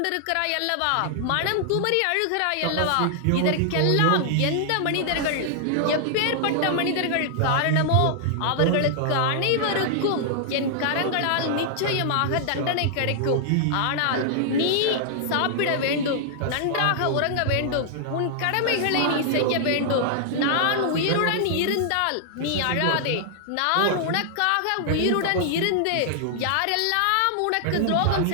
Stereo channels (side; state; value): both; different; correlation -0.01